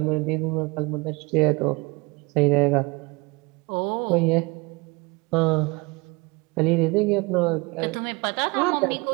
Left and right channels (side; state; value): left; quieter; 26.3 dB